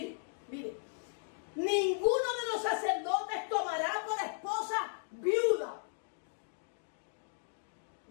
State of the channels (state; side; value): silent; right; digital silence